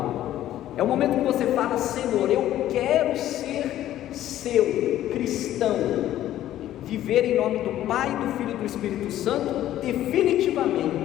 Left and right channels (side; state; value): right; quieter; 12.9 dB